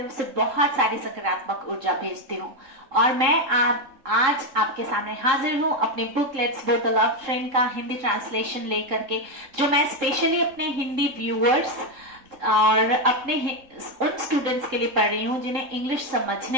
से बहुत सारी सकारात्मक ऊर्जा भेजती हूँ और मैं आज आपके सामने हाजिर हूँ अपनी book let's both the love train का हिंदी ट्रांसलेशन लेकर के, जो मैं स्पेशली अपने हिंदी व्यूअर्स और अपने उन स्टूडेंट्स के लिए पढ़ रही हूँ जिन्हें इंग्लिश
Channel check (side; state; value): left; late; 3.7 ms